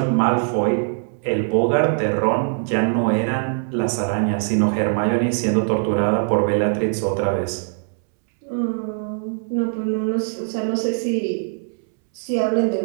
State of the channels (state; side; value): silent; left; 65 dB below the other